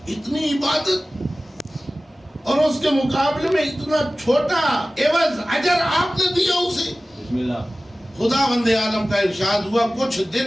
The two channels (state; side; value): normal; both; correlation 0.97